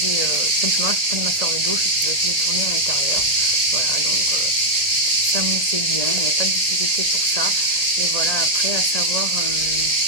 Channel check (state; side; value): late; left; 1.8 ms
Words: simplement, je prenais ma fleur de douche et puis je faisais tourner à l'intérieur. Voilà, donc ça moussait bien, il n'y avait pas de difficulté pour ça. Mais voilà, après, à savoir